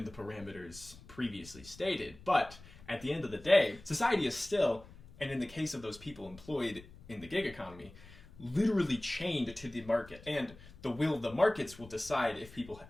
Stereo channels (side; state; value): left; noise; rumble, 20 dB below the sound